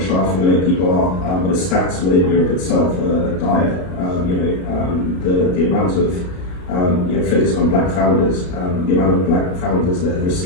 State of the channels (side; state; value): right; late; 33 ms